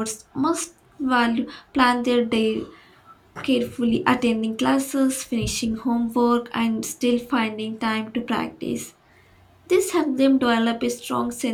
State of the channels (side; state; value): both; identical; correlation 1.00